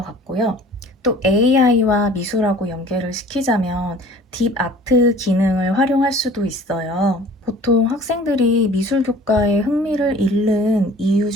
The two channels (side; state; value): both; normal; correlation 0.48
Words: 같고요. 또 AI와 미술하고 연계를 시키자면 딥 아트 기능을 활용할 수도 있어요. 보통 학생들이 미술 교과에 흥미를 잃는 이유